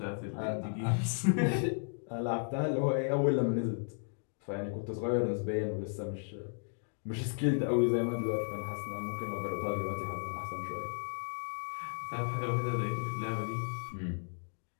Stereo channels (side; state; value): right; silent; digital silence